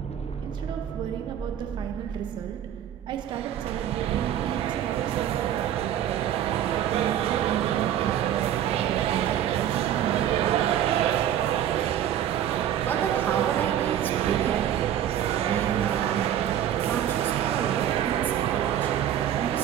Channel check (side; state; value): left; quieter; 10.7 dB